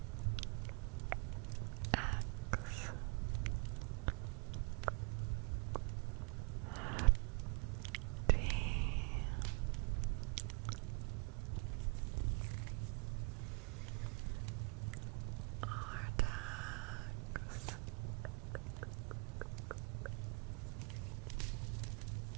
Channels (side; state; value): left; quieter; 32.9 dB